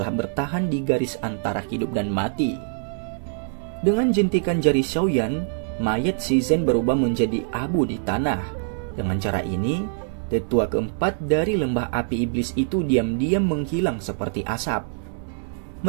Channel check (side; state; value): left; silent; digital silence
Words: bertahan di garis antara hidup dan mati. Dengan jentikan jari Xiaoyan, mayat Si Zhen berubah menjadi abu di tanah. Dengan cara ini, tetua keempat dari lembah api iblis itu diam-diam menghilang seperti asap.